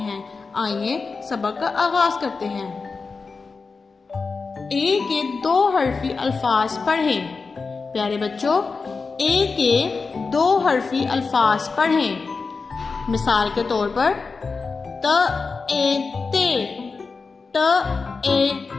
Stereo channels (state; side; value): quieter; right; 4.5 dB